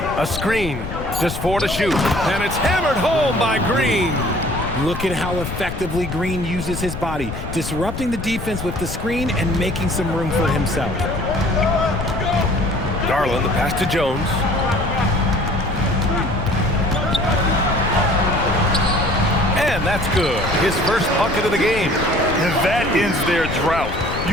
a screen. Just 4 to shoot. And it's hammered home by Green. Look at how effectively Green uses his body, disrupting the defense with the screen and making some room for himself. Garland, the pass to Jones. And that's good. His first bucket of the game. And that ends their drought.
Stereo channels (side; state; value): left; noise; rumble, 7 dB below the sound